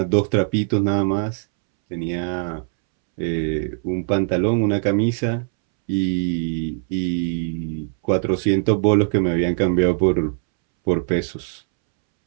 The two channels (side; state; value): left; silent; 65 dB below the other